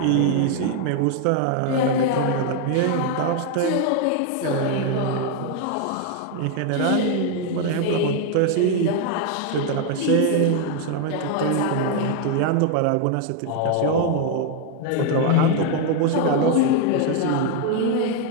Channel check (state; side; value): different; both; correlation 0.01